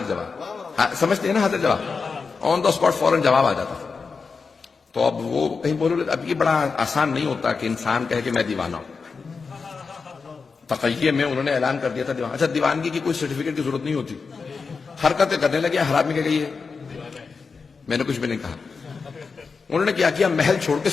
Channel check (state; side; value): quieter; right; 4.9 dB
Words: جواب سمجھتے ہیں نا؟ حاضر جواب آن دا اسپاٹ فوراً جواب آ جاتا. تو اب وہ کہیں بولو، اب یہ بڑا آسان نہیں ہوتا کہ انسان کہے کہ میں دیوانہ ہوں. تقیہ میں انہوں نے اعلان کر دیا تھا دیوانہ. اچھا دیوانگی کی کوئی سرٹیفکیٹ کی ضرورت نہیں ہوتی. حرکتیں کرنے لگے. حرام میں کیا گئی ہے؟ میں نے کچھ بھی نہیں کہا. انہوں نے کیا محل چھوڑ کے